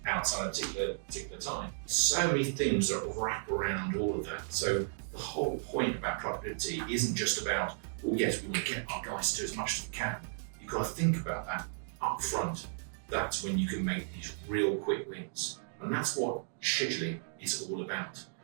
outside a particular time. So many things that wrap around all of that. So the whole point about productivity isn't just about, well, yes, we want to get our guys to do as much as we can. You've got to think about that up front. That's when you can make these real quick wins. And that's what scheduling is all about.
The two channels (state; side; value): silent; left; digital silence